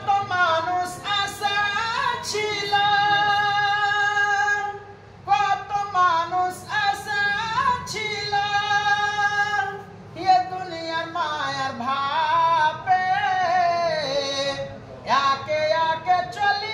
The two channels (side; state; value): both; identical; correlation 1.00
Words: মানুষ আশা ছিল, কত মানুষ আশা ছিল, এ দুনিয়ার মায়ার ভাবে একে একে